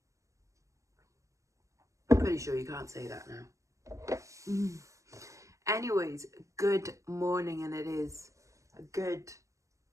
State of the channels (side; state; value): left; late; 0.15 ms